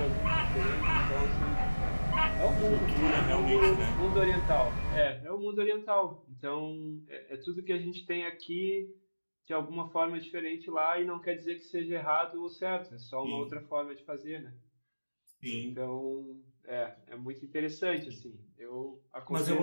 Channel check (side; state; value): both; inverted; correlation -1.00